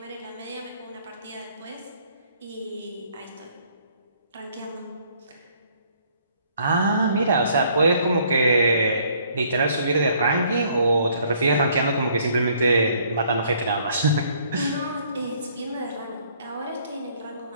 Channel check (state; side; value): inverted; both; correlation -0.63